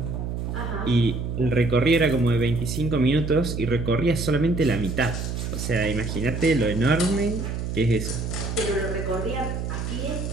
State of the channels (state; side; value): noise; right; hum, 4 dB below the sound